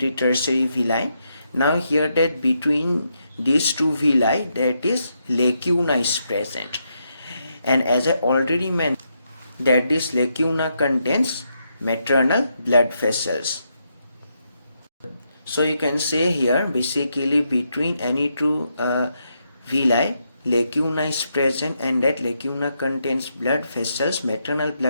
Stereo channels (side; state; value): both; inverted; correlation -0.81